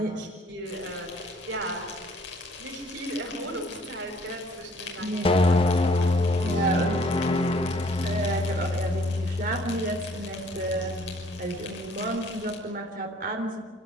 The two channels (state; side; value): normal; both; correlation 0.59